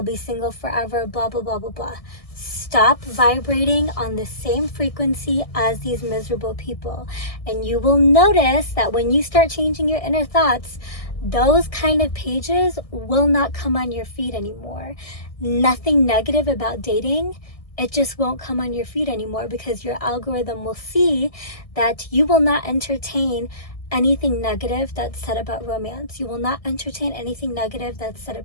be single forever, blah blah blah blah blah. Stop vibrating on the same frequency as these miserable people, and you will notice that when you start changing your inner thoughts, those kind of pages will not come on your feed anymore. Nothing negative about dating, it just won't come on your feed anymore, because your algorithm will see that you will not entertain anything negative that's said about romance. You will not entertain anything negative that's said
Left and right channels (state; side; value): late; right; 1.6 ms